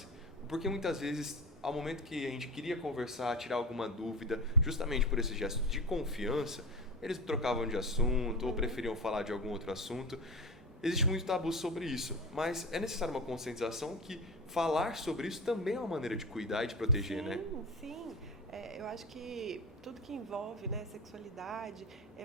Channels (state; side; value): normal; both; correlation 0.25